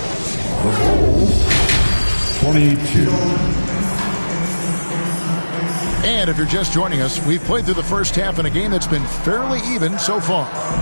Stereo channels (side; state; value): both; inverted; correlation -1.00